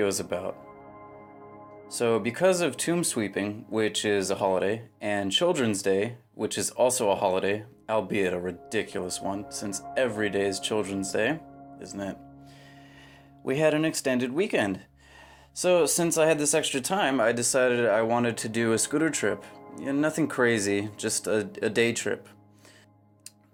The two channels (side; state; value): both; identical; correlation 1.00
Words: is about. So because of Tomb Sweeping, which is a holiday, and Children's Day, which is also a holiday, albeit a ridiculous one, since every day is Children's Day, isn't it? We had an extended weekend. So since I had this extra time, I decided I wanted to do a scooter trip. Yeah, nothing crazy, just a day trip.